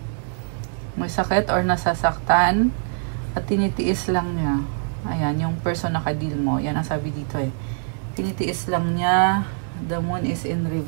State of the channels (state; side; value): silent; left; digital silence